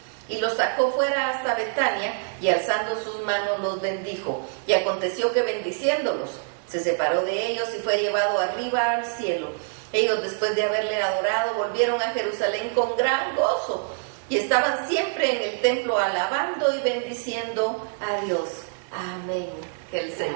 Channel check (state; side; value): silent; left; 62 dB below the other